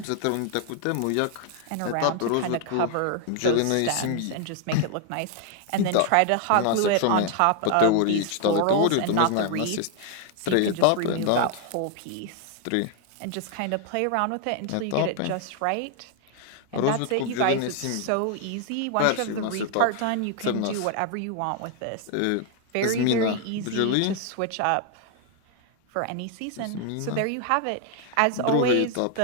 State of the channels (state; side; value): different; both; correlation 0.00